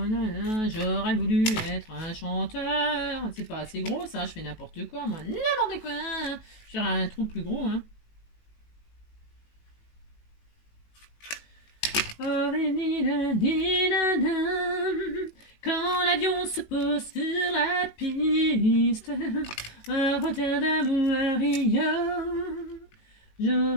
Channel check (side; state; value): right; late; 19 ms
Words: là là, j'aurais voulu être un chanteur. C'est pas assez gros, ça, je fais n'importe quoi, moi. N'importe quoi. Je vais faire un trou plus gros, hein. Oh, quand l'avion se pose sur la piste, à Rotterdam ou à Rio,